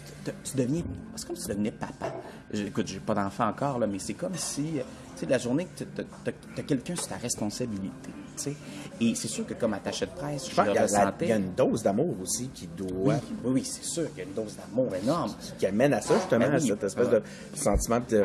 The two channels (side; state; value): both; identical; correlation 1.00